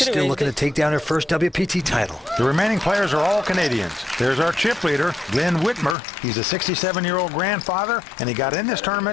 still looking to take down her first WPT title. The remaining players are all Canadians. There's our chip leader, Glenn Whitmer. He's a 67-year-old grandfather, and he got in this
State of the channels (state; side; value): drops out; right; at 6.0 s